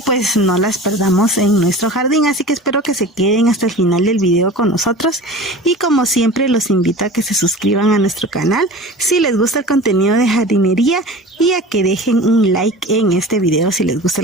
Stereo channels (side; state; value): both; normal; correlation 0.37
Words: no las perdamos en nuestro jardín. Así que espero que se queden hasta el final del video con nosotros y como siempre los invito a que se suscriban a nuestro canal si les gusta el contenido de jardinería y a que dejen un like en este video si les gusta